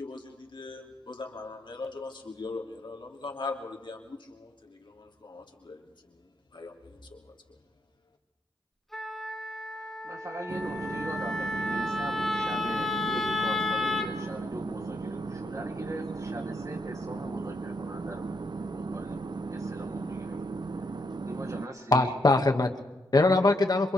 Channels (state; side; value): normal; both; correlation 0.77